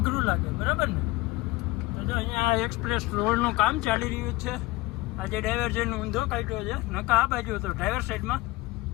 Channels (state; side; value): quieter; right; 20.6 dB